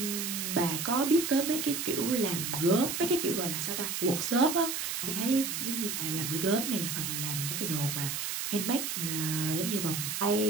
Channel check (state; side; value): noise; right; hiss, 3 dB below the sound